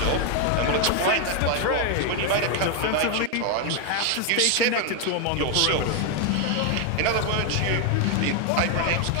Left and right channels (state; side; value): different; both; correlation 0.01